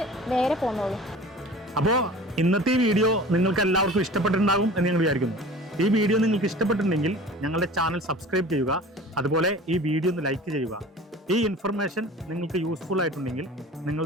നേരെ പോകുന്നോളൂ. അപ്പോൾ ഇന്നത്തെ വീഡിയോ നിങ്ങൾക്ക് എല്ലാവർക്കും ഇഷ്ടപ്പെട്ടിട്ടുണ്ടാകും എന്ന് ഞങ്ങൾ വിചാരിക്കുന്നു. ഈ വീഡിയോ നിങ്ങൾക്ക് ഇഷ്ടപ്പെട്ടിട്ടുണ്ടെങ്കിൽ ഞങ്ങളുടെ ചാനൽ സബ്സ്ക്രൈബ് ചെയ്യുക. അതുപോലെ ഈ വീഡിയോ ഒന്ന് ലൈക്ക് ചെയ്യുക. ഈ ഇൻഫർമേഷൻ നിങ്ങൾക്ക് യൂസ്ഫുൾ ആയിട്ടുണ്ടെങ്കിൽ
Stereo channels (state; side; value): normal; both; correlation 0.41